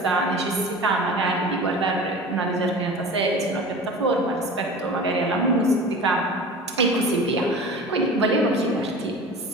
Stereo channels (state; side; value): normal; both; correlation 0.37